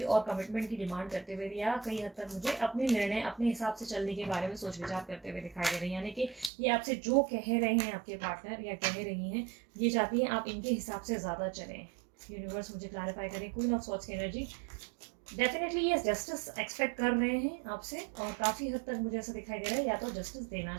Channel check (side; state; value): left; drops out; at 6.5 s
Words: और कमिटमेंट की डिमांड करते हुए, या कई हद तक मुझे अपने निर्णय अपने हिसाब से चलने के बारे में सोच विचार करते हुए दिखाई दे रहे हैं, यानी कि ये आपसे जो कह रहे हैं आपके पार्टनर या कह रही हैं, ये चाहती हैं आप इनके हिसाब से ज़्यादा चलें। यूनिवर्स मुझे क्लैरिफाई करें। क्वीन ऑफ सॉर्ड्स की एनर्जी, डेफिनेटली ये जस्टिस एक्सपेक्ट कर रहे हैं आपसे, और काफ़ी हद तक मुझे ऐसा दिखाई दे रहा है या तो जस्टिस देना